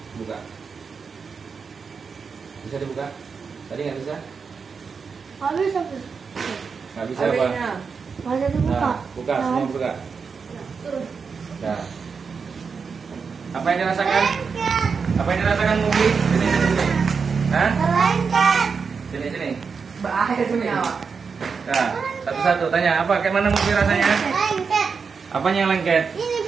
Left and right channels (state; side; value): quieter; left; 5.5 dB